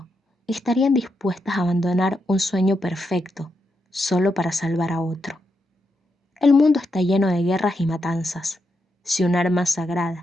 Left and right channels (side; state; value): both; normal; correlation 0.83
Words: estarían dispuestas a abandonar un sueño perfecto solo para salvar a otro? El mundo está lleno de guerras y matanzas. Si un arma